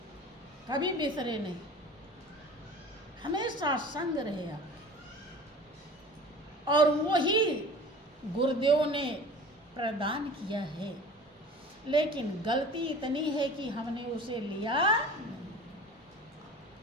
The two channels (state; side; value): normal; both; correlation 0.41